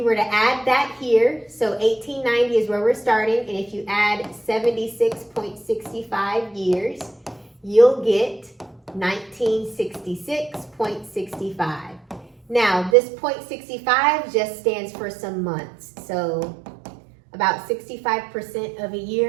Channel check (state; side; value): drops out; left; at 13.0 s